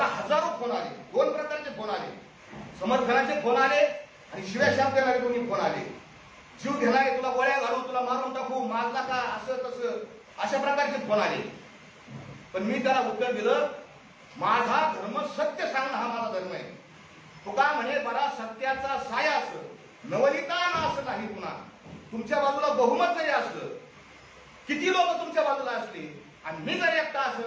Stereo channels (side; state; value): both; identical; correlation 1.00